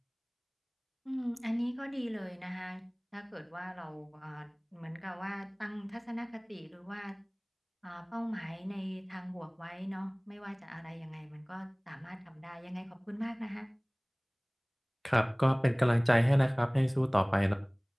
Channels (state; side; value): identical; both; correlation 1.00